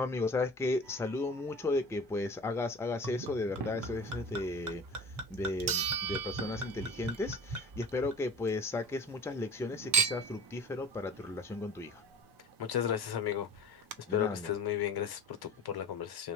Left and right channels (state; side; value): normal; both; correlation 0.41